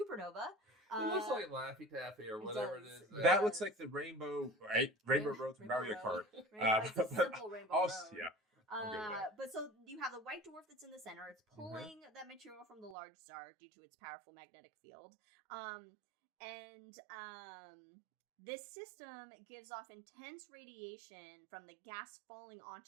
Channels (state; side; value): drops out; left; at 13.0 s